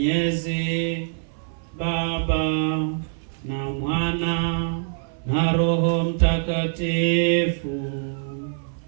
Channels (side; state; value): left; silent; 58 dB below the other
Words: Baba na Mwana na Roho Mtakatifu.